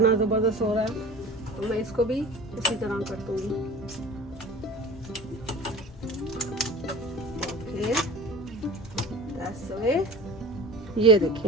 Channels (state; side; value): normal; both; correlation 0.36